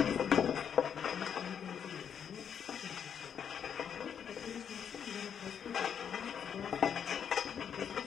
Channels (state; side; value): quieter; right; 8.0 dB